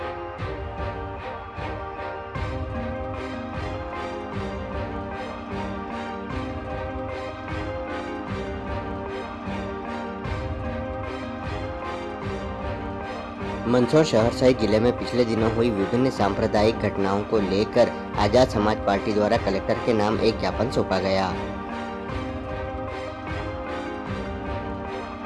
मंदसौर शहर सहित जिले में पिछले दिनों हुई विभिन्न सांप्रदायिक घटनाओं को लेकर आजाद समाज पार्टी द्वारा कलेक्टर के नाम एक ज्ञापन सौंपा गया।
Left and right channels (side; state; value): both; identical; correlation 1.00